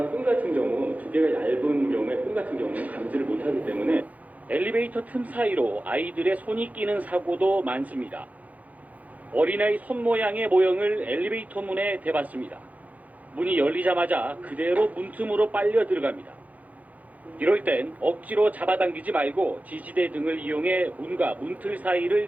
끈 같은 경우 두께가 얇은 경우에 끈 같은 경우는 감지를 못하기 때문에 엘리베이터 틈 사이로 아이들의 손이 끼는 사고도 많습니다. 어린아이 손 모양의 모형을 엘리베이터 문에 대봤습니다. 문이 열리자마자 그대로 문틈으로 빨려 들어갑니다. 이럴 땐 억지로 잡아당기지 말고 지지대 등을 이용해 문과 문틀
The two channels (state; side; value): late; left; 0.076 ms